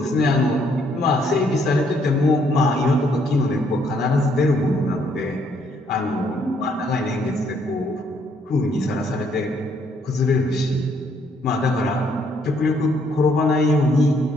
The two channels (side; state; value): both; normal; correlation 0.69